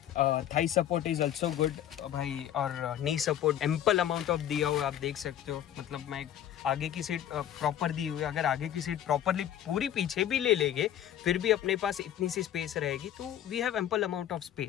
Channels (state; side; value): quieter; right; 10.9 dB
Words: Thai support is also good भाई, और नी सपोर्ट एम्पल अमाउंट ऑफ दिया हुआ है, आप देख सकते हो। मतलब मैं आगे की सीट प्रॉपर दी हुई है। अगर आगे की सीट प्रॉपरली पूरी पीछे भी ले लेंगे, फिर भी अपने पास इतनी सी स्पेस रहेगी। तो we have ample amount of